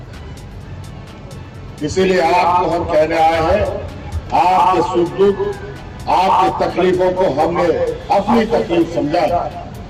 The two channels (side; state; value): both; identical; correlation 1.00